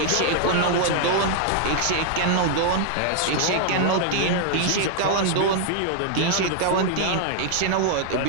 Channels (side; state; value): both; different; correlation 0.00